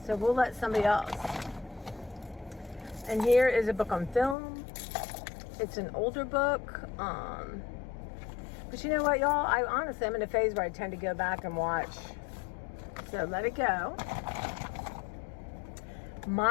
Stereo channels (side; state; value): right; drops out; at 4.4 s